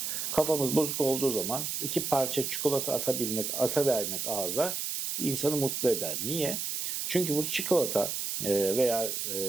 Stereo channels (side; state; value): right; noise; hiss, 2 dB below the sound